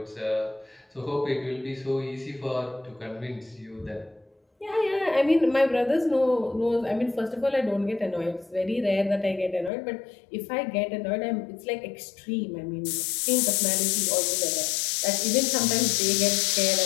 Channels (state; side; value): drops out; right; at 9.7 s